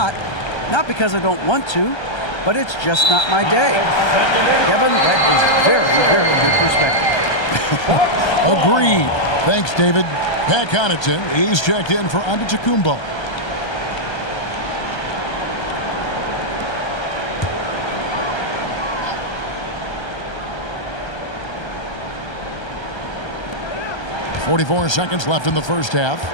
Not because I don't want to, but it's just not my day. Kevin, that is very, very good perspective. Agreed. Thanks, David. Pat Connaughton, he's checked in for Antetokounmpo. .44 seconds left in the first half.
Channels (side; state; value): right; late; 1.3 ms